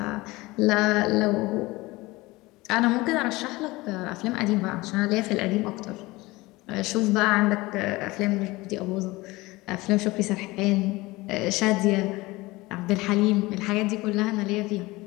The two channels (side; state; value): right; quieter; 21.1 dB